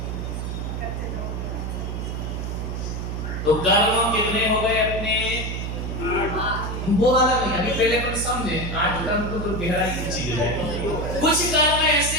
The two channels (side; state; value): right; noise; hum, 4 dB below the sound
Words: तो कर्म कितने हो गए अपने? वो वाला नहीं, अभी पहले अपन समझे। 8 कर्म तो गहराई की चीज है। कुछ कर्म